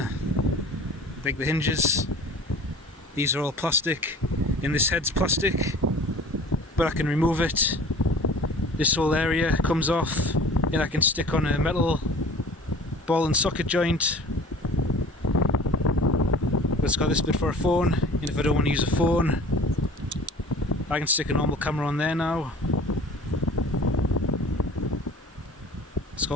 hinges. These are all plastic, and this head's plastic, but I can remove it. This whole area comes off, and I can stick on a metal ball and socket joint. But it's got this bit for a phone, and if I don't want to use a phone, I can stick a normal camera on there now. It's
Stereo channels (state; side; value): normal; both; correlation 0.45